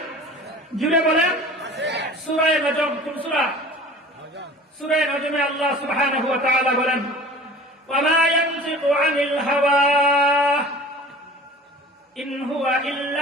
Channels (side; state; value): both; normal; correlation 0.42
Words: জুড়ে বলেন। সূরা নজম, কোন সূরা? সূরা নজমে আল্লাহ সুবহানাহু ওয়া তাআলা বলেন, ওয়া মা ইয়ানতিকু আনিল হাওয়া ইন হুয়া